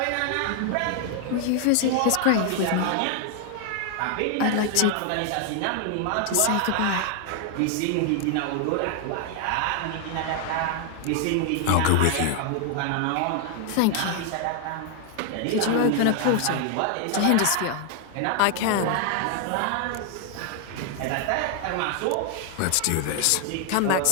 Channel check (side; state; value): both; different; correlation 0.00